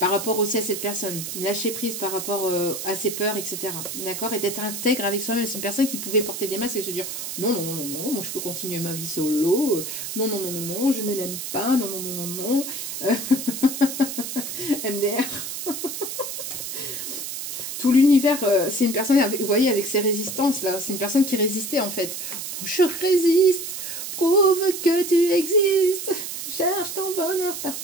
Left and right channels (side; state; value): right; noise; hiss, 6 dB below the sound